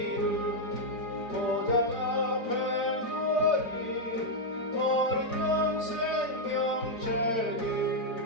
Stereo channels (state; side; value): late; right; 4.4 ms